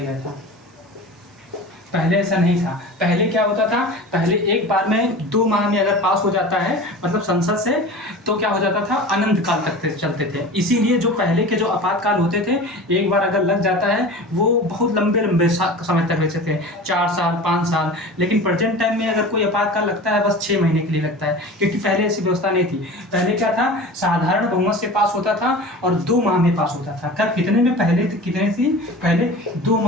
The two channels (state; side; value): normal; both; correlation 0.36